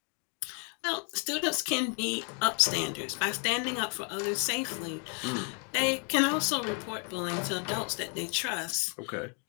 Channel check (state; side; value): quieter; right; 39.2 dB